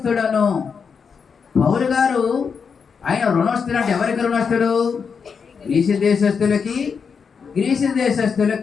పౌలు గారు ఆయన రుణస్థుడు అంటే ఎవరికి రుణస్థుడు? గ్రీసు దేశస్థులకి, గ్రీసు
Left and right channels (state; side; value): quieter; right; 6.0 dB